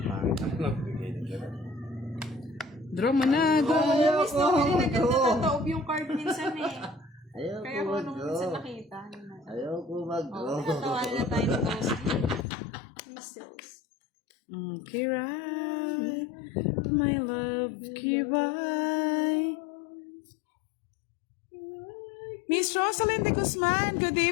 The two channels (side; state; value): right; drops out; at 12.5 s